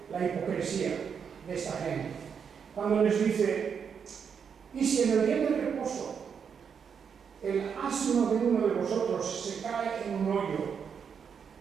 la hipocresía de esta gente? Cuando les dice, y si en el día del reposo el asno de uno de vosotros se cae en un hoyo,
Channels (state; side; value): quieter; left; 6.9 dB